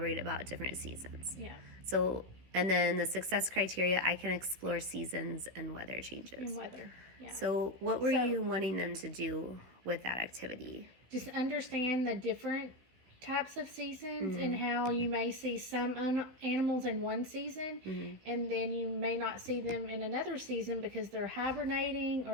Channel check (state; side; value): late; left; 16 ms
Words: about different seasons. So, and then the success criteria, I can explore seasons and weather changes. So what were you wanting them to do with that activity? Just understand the different types of seasons and how you may see some animals in one season and then you may not see them in another season because they're hibernating